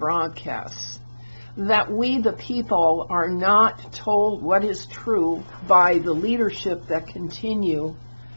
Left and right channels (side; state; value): both; inverted; correlation -1.00